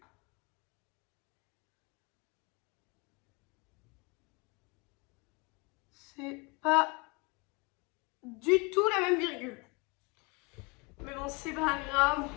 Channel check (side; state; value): right; quieter; 29.2 dB